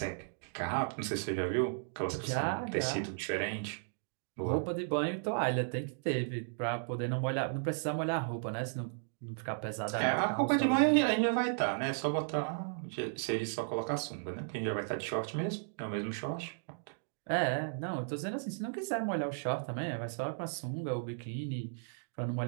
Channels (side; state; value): left; silent; digital silence